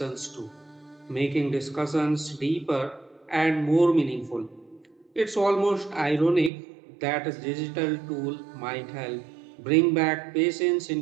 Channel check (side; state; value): left; drops out; at 6.5 s